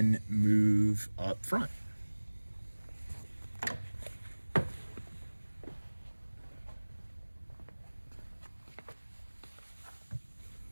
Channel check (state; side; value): inverted; both; correlation -1.00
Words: move up front.